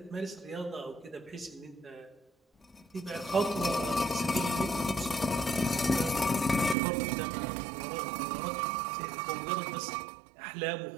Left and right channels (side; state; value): left; drops out; at 6.8 s